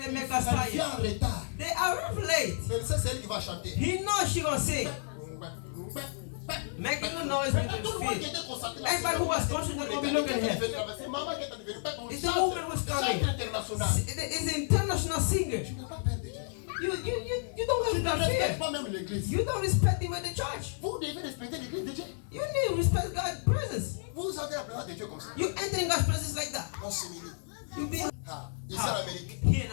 they make us Elle vient tired. en retard. They are late. Mais c'est elle qui va chanter. He knows she gonna say, making a noise with Tout le monde qui the feet. était concentré Everybody who was concentrated will be looking here. C'est maman qui est devenue It's the woman who's coming. chante international. It's an international singer. Tu n'as pas peur de Dieu. You don't Tu have ne God respectes fear. pas même l'église. You don't respect even the church. Vous devez respecter l'église de Dieu. You need to respect God's presence. Vous avez la présence de Dieu comme ça. You entering God's presence like that. On s'humilie. You be Ah, ici en Amérique. here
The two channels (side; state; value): right; silent; digital silence